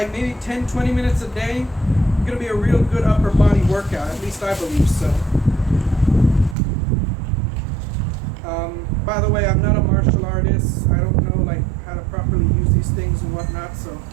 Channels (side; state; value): left; drops out; at 6.6 s